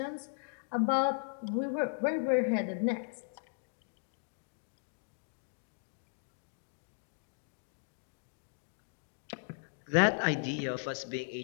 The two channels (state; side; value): silent; right; digital silence